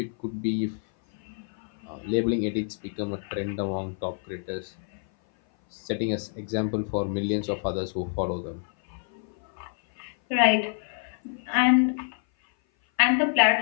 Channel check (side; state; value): right; silent; 57 dB below the other